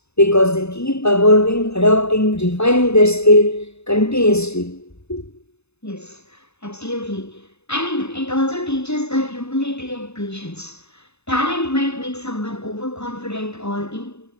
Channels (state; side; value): late; right; 0.80 ms